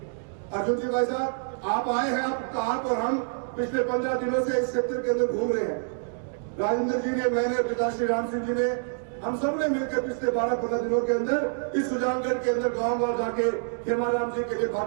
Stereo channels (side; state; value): left; silent; digital silence